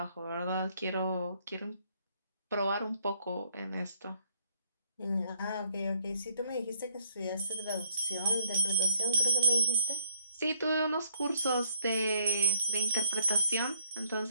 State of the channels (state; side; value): inverted; both; correlation -0.70